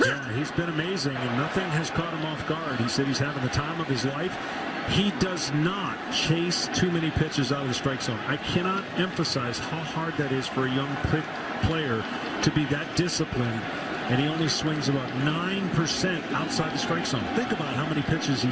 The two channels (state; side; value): identical; both; correlation 1.00